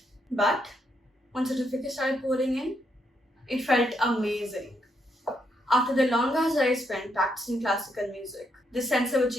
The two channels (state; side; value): normal; both; correlation 0.78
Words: But once certificates started pouring in, it felt amazing. After the long hours I spent practicing classical music, this sense of